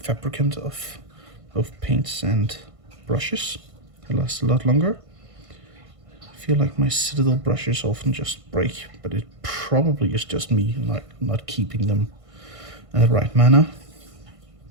of both paints and brushes. They last a lot longer. I feel like my Citadel brushes often just break, but it probably is just me not keeping them in the right manner,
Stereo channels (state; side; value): late; left; 1.5 ms